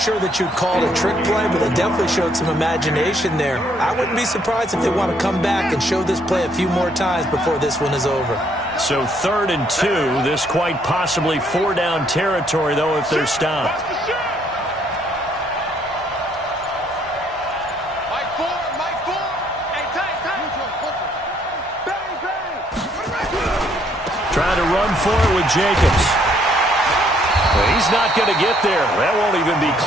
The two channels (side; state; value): both; normal; correlation 0.68